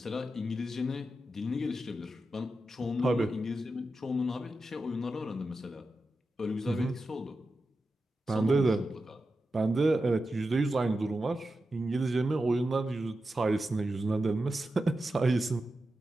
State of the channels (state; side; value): normal; both; correlation 0.90